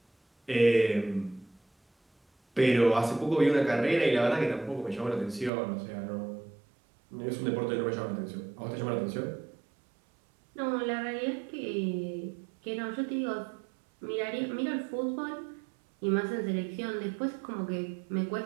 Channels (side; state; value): left; drops out; at 5.5 s